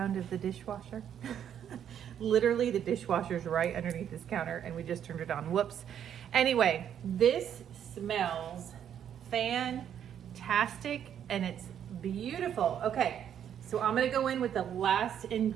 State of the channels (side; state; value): left; quieter; 9.3 dB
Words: of the dishwasher? Literally the dishwasher's right underneath this counter and we just turned it on. Whoops. Anyway, this smells fantastic and it's beautiful. Okay, so I'm gonna go in with the last